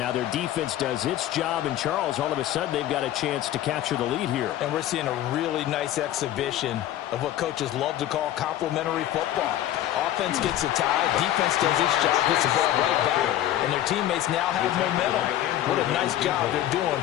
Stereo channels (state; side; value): quieter; right; 12.8 dB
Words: their defense does its job, and Charles, all of a sudden, they've got a chance to capture the lead here. And we're seeing a really nice exhibition of what coaches love to call complementary football. Offense gets a tie, defense does its job, gets the ball right back, and their teammates now have momentum. What a nice job they're